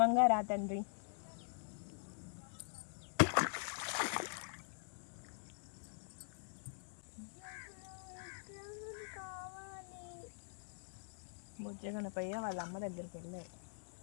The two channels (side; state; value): right; silent; digital silence